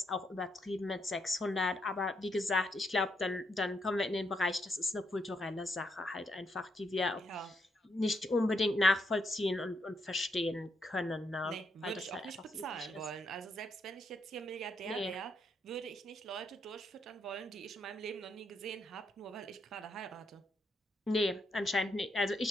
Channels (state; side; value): normal; both; correlation 0.78